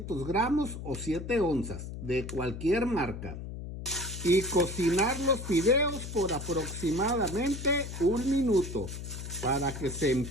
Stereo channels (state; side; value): noise; left; hum, 8 dB below the sound